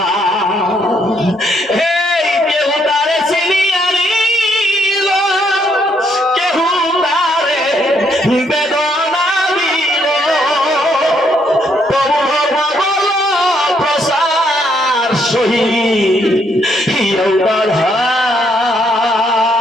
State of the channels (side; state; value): both; normal; correlation 0.72